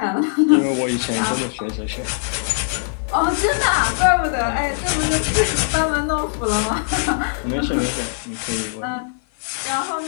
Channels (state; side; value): silent; right; 55 dB below the other